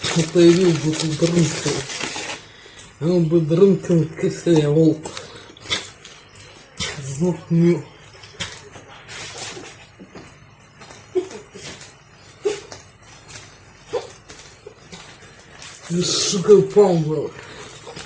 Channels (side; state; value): both; identical; correlation 1.00